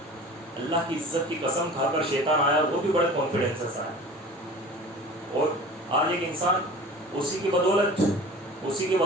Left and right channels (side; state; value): both; normal; correlation 0.40